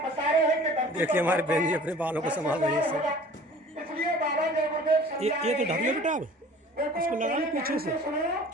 बता रहे हैं कि देखिए हमारे बहन जी अपने बालों को संभाल रही है। इसलिए बाबा जय गुरुदेव ये तो ढक लो बेटा, अब इसको लगा लो पीछे से,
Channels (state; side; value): normal; both; correlation 0.46